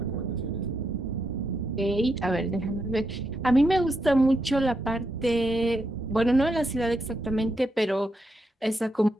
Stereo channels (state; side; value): normal; both; correlation 0.82